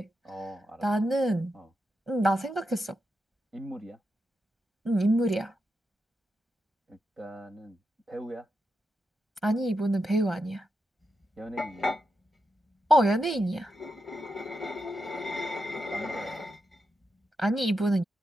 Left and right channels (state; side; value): normal; both; correlation 0.86